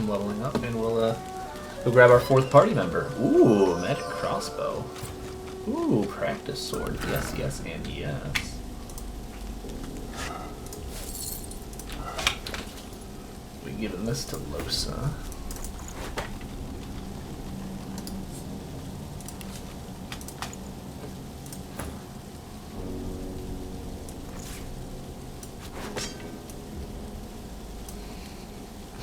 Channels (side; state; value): both; identical; correlation 1.00